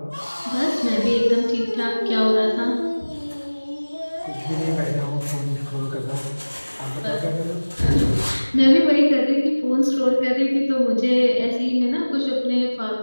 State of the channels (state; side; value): inverted; both; correlation -1.00